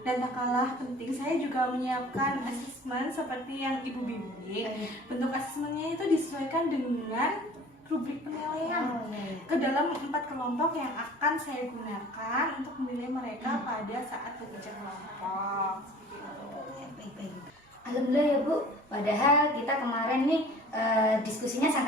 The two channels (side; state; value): both; normal; correlation 0.46